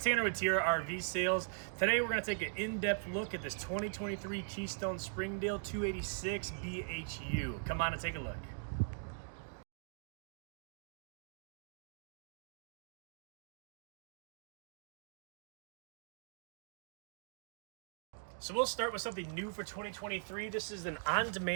with Tiara RV Sales. Today we're going to take an in-depth look at this 2023 Keystone Springdale 286 BHU. Come on and take a look. So we'll start with something new for 2023. This is an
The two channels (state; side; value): silent; left; digital silence